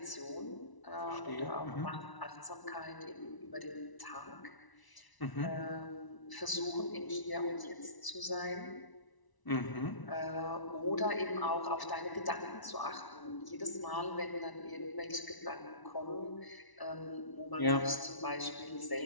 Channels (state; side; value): late; right; 1.0 ms